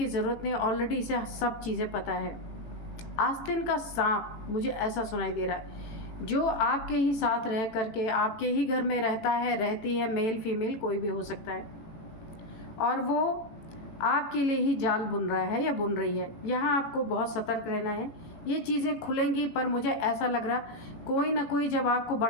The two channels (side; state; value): right; late; 18 ms